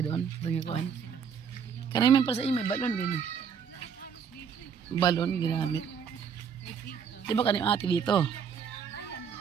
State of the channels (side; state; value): left; quieter; 7.0 dB